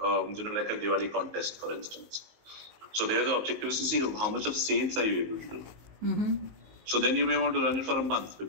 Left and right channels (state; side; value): late; left; 19 ms